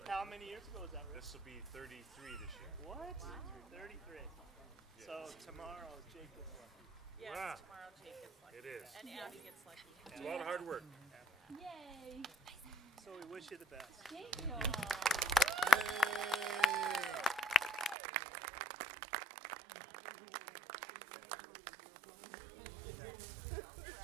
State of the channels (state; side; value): drops out; left; at 17.9 s